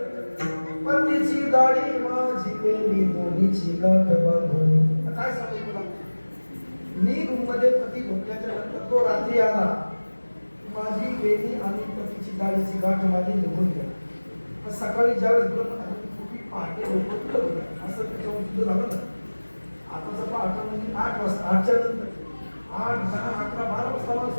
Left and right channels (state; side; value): inverted; both; correlation -1.00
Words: पतीची दाढी माझी केली दोन्हीची गाठ बांधून. काय सांगू तुला, मी रूम मध्ये पती झोपल्याच्या नंतर तो रात्री आला, माझी वेणी आणि पतीची दाढीची गाठ माझी निघून गेली. सकाळी ज्यावेळेस पहाटे असं त्याच्यावर सुद्धा झालं ना. आताचा पहाटा म्हणजे 8 वाजता, 8च्या नंतर 8, 10, 11, 12 वाजता मला